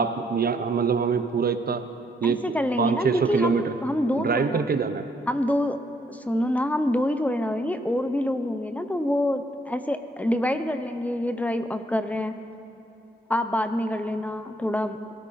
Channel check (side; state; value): both; normal; correlation 0.70